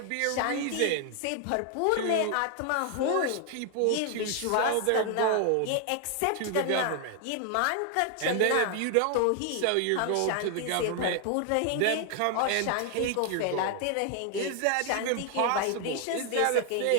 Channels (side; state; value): both; different; correlation 0.00